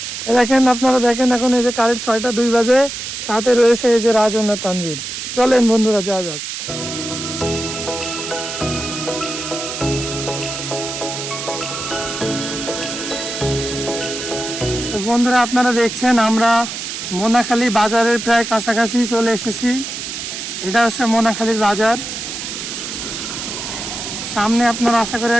দেখেন আপনারা দেখেন এখন এই যে কারেন্ট 6টা 2 বাজে, সাথে রয়েছে এই যে রাজন আর তানভীর। চলেন বন্ধুরা যাওয়া যাক। তো বন্ধুরা আপনারা দেখছেন আমরা মোনাখালী বাজারের প্রায় কাছাকাছি চলে এসেছি। এটা হচ্ছে মোনাখালীর বাজার। সামনে আপনারা আশা করে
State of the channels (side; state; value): right; noise; hiss, 6 dB below the sound